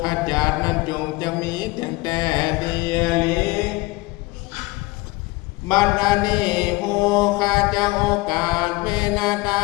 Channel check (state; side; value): quieter; right; 22.3 dB